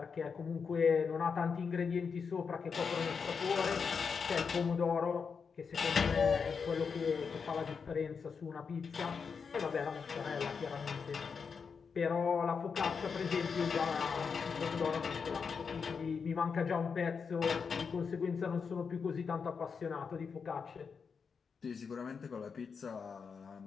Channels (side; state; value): right; quieter; 5.8 dB